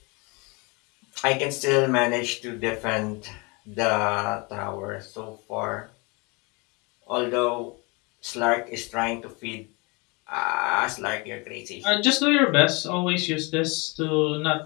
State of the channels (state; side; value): quieter; right; 28.6 dB